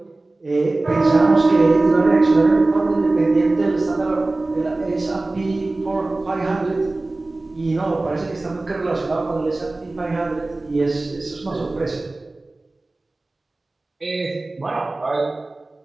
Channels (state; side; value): quieter; left; 3.0 dB